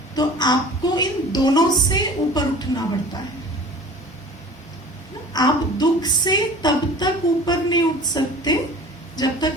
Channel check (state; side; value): normal; both; correlation 0.42